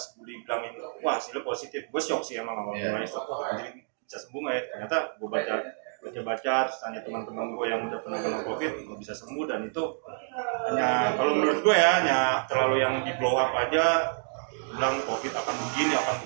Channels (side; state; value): left; silent; 59 dB below the other